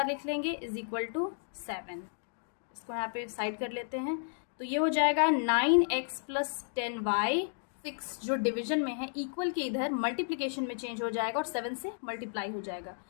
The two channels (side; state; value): right; silent; digital silence